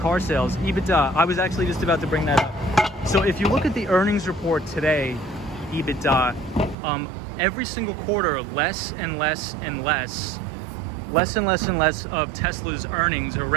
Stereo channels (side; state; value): left; drops out; at 6.8 s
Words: sales? EBITDA, I was actually just about to bring that up. So if you look at the earnings report today, EBITDA, every single quarter, less and less of Tesla's earnings or